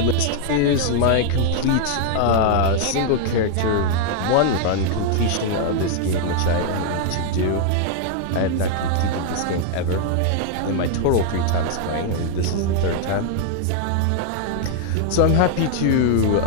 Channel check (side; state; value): both; different; correlation 0.00